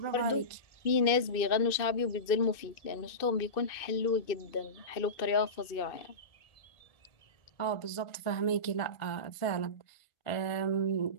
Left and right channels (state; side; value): late; right; 2.6 ms